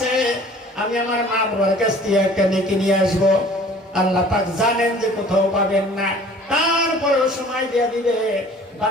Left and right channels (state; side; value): normal; both; correlation 0.49